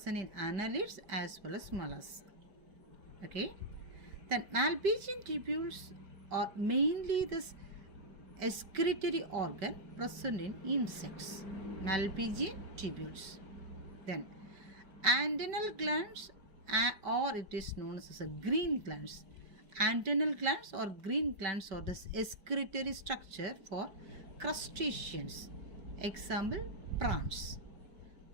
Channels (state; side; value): late; left; 5.1 ms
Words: in annelids as well as mollusks. Okay. Then Malpighian tubules are mainly this excretory organ present in insects. Malpighian tubules. Then antennal glands or it is known as green glands. Antennal glands or green glands are this excretory structure for crustaceans. Example, prawns.